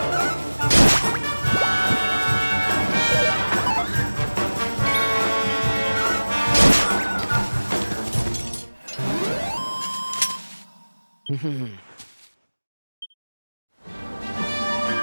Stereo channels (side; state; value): both; inverted; correlation -1.00